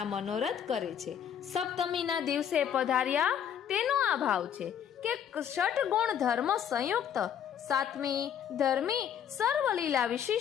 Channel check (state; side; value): quieter; right; 9.0 dB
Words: મનોરથ કરે છે. સપ્તમીના દિવસે પધાર્યા તેનો આ ભાવ છે કે ષટ ગુણ ધર્મ સંયુક્ત, સાતમી ધર્મી સર્વલીલા